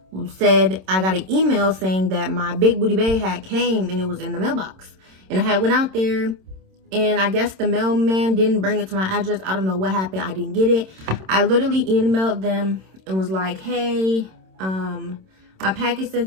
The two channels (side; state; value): left; late; 26 ms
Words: said I got an email saying that my Big Booty Babe had came and it was in the mailbox. And I had went out there, and I guess the mailman didn't bring it to my address. I don't know what happened. I didn't get it. I literally emailed them and was like, hey, my package